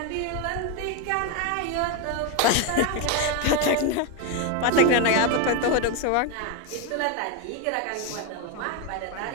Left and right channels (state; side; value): different; both; correlation 0.02